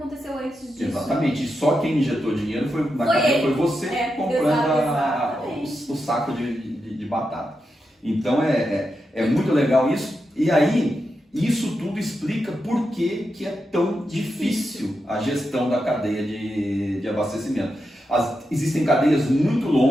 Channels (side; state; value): both; normal; correlation 0.87